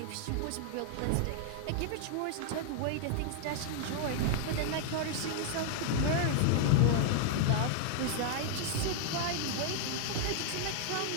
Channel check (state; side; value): different; both; correlation 0.00